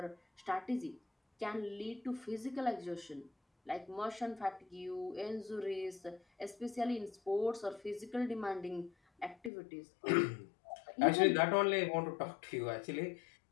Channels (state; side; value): drops out; right; at 9.5 s